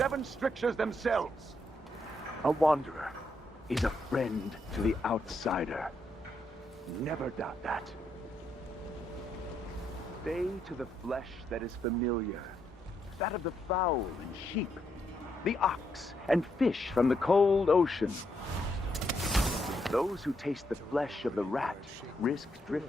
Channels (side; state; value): both; normal; correlation 0.78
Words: strictures themselves. A wanderer is a friend to the outsider. Never doubt that. Stay to the flesh that is familiar, that of the fowl and sheep, the ox and fish from the cold ocean. Those who taste the flesh of the rat risk